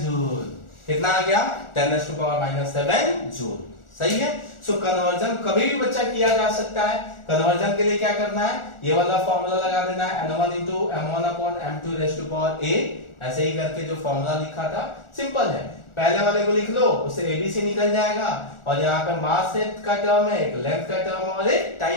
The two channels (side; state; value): right; late; 1.4 ms